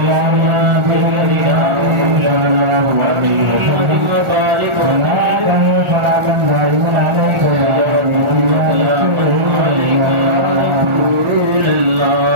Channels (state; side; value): late; left; 1.4 ms